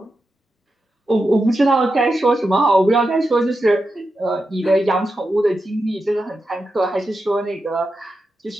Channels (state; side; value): normal; both; correlation 0.89